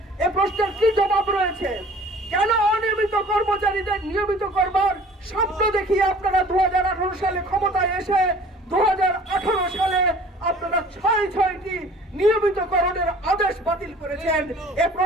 এ প্রশ্নের কি জবাব রয়েছে? কেন অনিয়মিত কর্মচারীদের নিয়মিত করবার স্বপ্ন দেখিয়ে আপনারা 2018 সালে ক্ষমতায় এসে 2018 সালে আপনারা 6টি নিয়মিতকরণের আদেশ বাতিল করেছেন? এ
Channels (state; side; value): normal; both; correlation 0.49